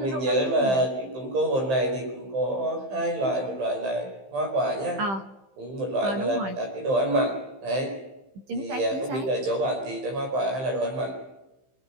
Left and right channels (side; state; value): left; late; 15 ms